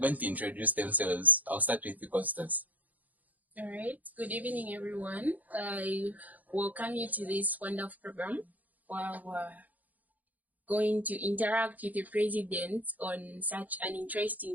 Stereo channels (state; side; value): late; left; 0.080 ms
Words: to introduce themselves. I'll start with you, Constance. All right. Good evening, everyone. I welcome you to this wonderful program where we're going to interact with the president on such an